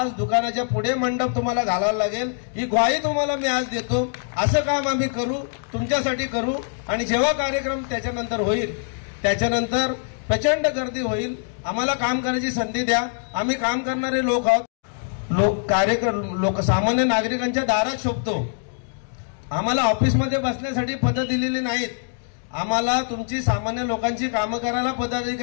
दुकानाच्या पुढे मंडप तुम्हाला घालायला लागेल. ही ग्वाही तुम्हाला मी आज देतो. असं काम आम्ही करू, तुमच्यासाठी करू. आणि जेव्हा कार्यक्रम त्याच्यानंतर होईल, त्याच्यानंतर प्रचंड गर्दी होईल. आम्हाला काम करण्याची संधी द्या. आम्ही काम करणारे लोक आहोत. लोक सामान्य नागरिकांच्या दारात शोभतो. आम्हाला ऑफिसमध्ये बसण्यासाठी पदं दिलेली नाहीत. आम्हाला तुमची सामान्य लोकांची कामं करायला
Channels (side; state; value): right; silent; digital silence